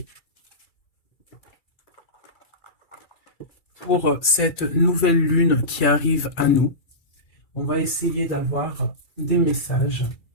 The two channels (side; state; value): right; late; 2.3 ms